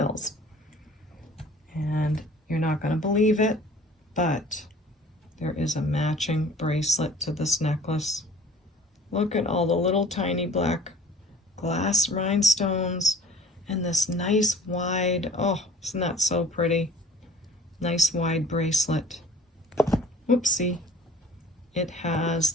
And you're not going to believe it, but there is a matching bracelet to this necklace. Look at all the little tiny black glass rhinestones and this nice wide, oh, isn't that so pretty? Nice wide bracelet. Whoopsie. It has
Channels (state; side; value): normal; both; correlation 0.47